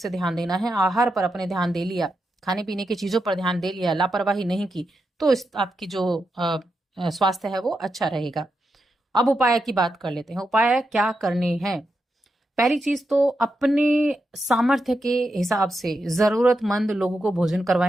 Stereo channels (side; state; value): both; normal; correlation 0.86